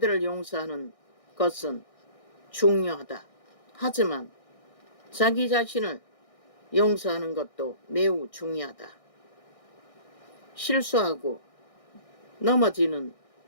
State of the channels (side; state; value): right; late; 1.6 ms